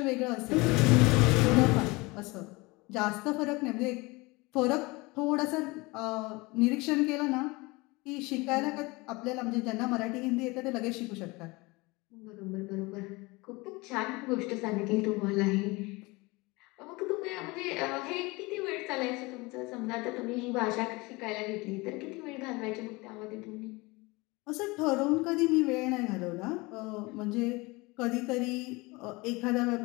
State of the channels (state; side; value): quieter; right; 24.1 dB